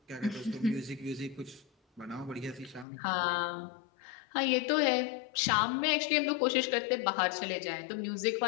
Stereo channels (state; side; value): drops out; right; at 2.9 s